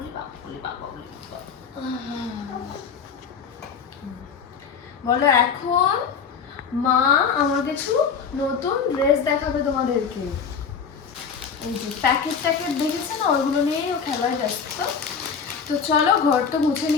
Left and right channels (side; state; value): right; quieter; 6.3 dB